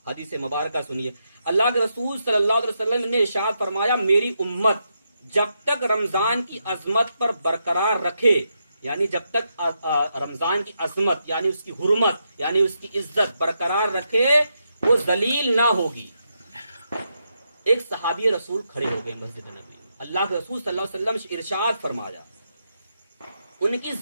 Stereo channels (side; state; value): both; inverted; correlation -0.83